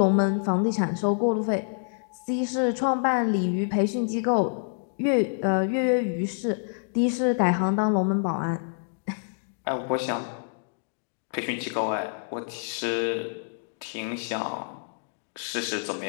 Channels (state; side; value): silent; right; digital silence